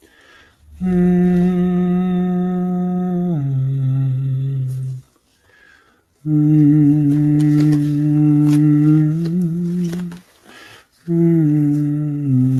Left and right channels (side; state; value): both; identical; correlation 1.00